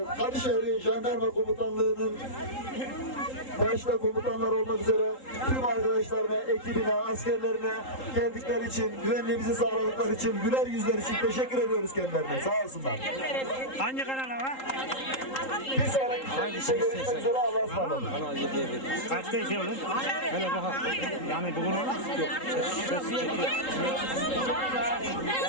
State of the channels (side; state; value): right; late; 3.8 ms